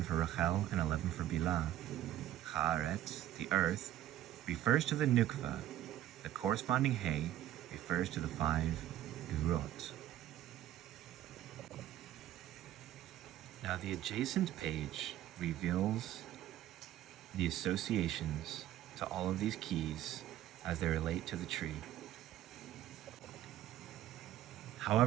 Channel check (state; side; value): quieter; left; 12.9 dB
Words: for Rachel and 11 for Bilah. Haaretz, the earth, refers to the Nukva. The corresponding He refers to the 5 Gvurot. Now the adjacent page reveals the associations to all of these keys as they relate to the tree.